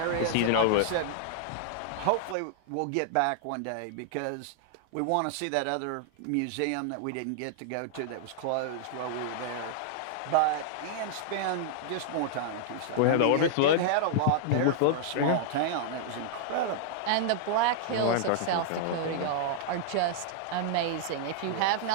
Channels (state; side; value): different; both; correlation -0.01